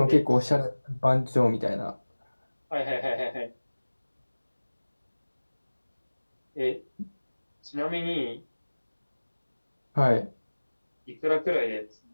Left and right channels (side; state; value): both; inverted; correlation -1.00